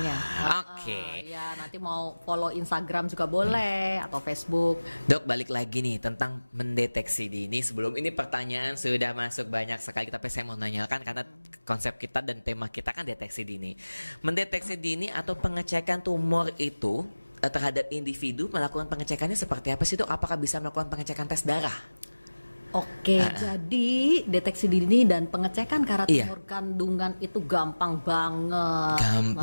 Oke. Ya nanti mau follow Instagram juga boleh atau Facebook. Dok, balik lagi nih tentang mendeteksi dini. Sebelum ini pertanyaan sudah masuk banyak sekali, tapi saya mau nanyakan karena konsep kita dan tema kita kan deteksi dini. Mendeteksi dini atau pengecekan tumor itu terhadap individu, melakukan pengecekannya seperti apa sih, Dok? Apakah bisa melakukan pengecekan tes darah? Oke, jadi deteksi dini dan pengecekan tumor kandungan itu gampang banget.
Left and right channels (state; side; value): inverted; both; correlation -1.00